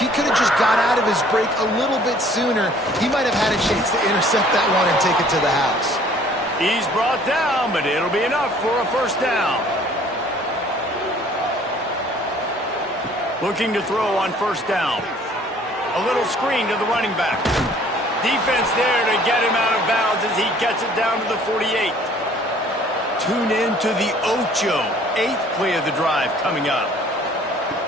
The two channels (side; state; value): both; normal; correlation 0.55